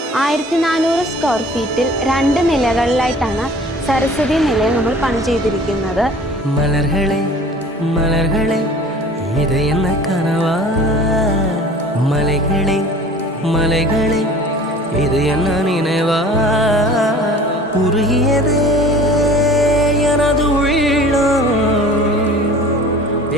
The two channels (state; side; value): normal; both; correlation 0.45